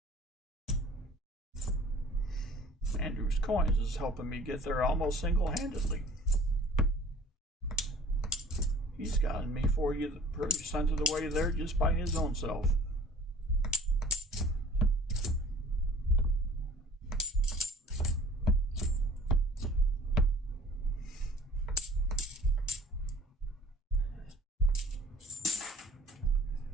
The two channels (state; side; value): normal; both; correlation 0.49